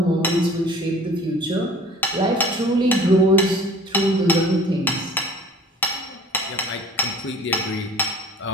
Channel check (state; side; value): normal; both; correlation 0.47